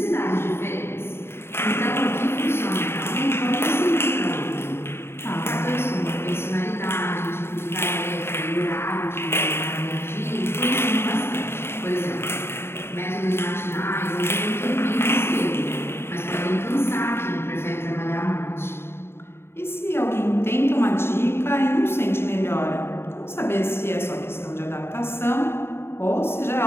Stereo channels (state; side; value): late; right; 0.12 ms